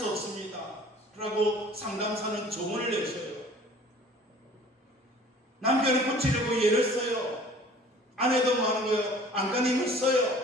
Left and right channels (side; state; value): both; normal; correlation 0.49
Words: 없습니다. 라고 상담사는 조언을 내셔요. 남편을 고치려고 애를 써요. 아내도 뭐 하는 거예요? 안간힘을